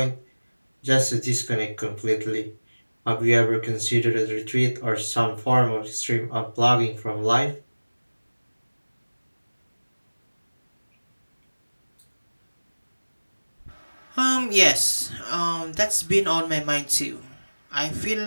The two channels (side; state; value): both; inverted; correlation -1.00